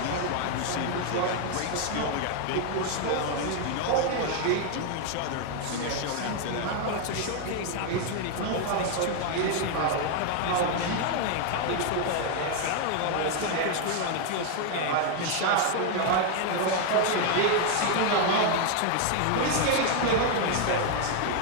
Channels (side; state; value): both; different; correlation 0.00